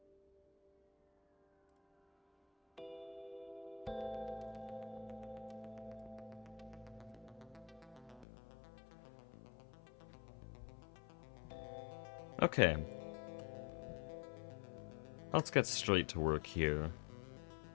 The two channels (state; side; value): drops out; right; at 8.2 s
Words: Okay. Let's get straight to work here.